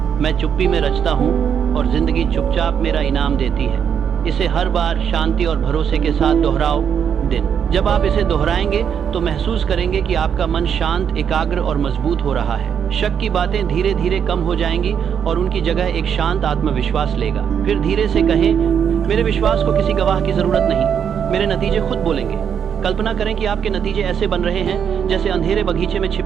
मैं चुप्पी में रचता हूँ और जिंदगी चुपचाप मेरा इनाम देती है। इसे हर बार शांति और भरोसे के साथ दोहराओ दिन। जब आप इसे दोहराएंगे तो महसूस करेंगे कि आपका मन शांत, एकाग्र और मजबूत हो रहा है। शक की बातें धीरे धीरे कम हो जाएंगी और उनकी जगह एक शांत आत्मविश्वास लेगा। फिर धीरे से कहें, मेरे विश्वास को किसी गवाह की जरूरत नहीं, मेरे नतीजे खुद बोलेंगे। कल्पना करें कि आपके नतीजे ऐसे बन रहे हैं जैसे अंधेरे बगीचे में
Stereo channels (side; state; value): left; quieter; 7.9 dB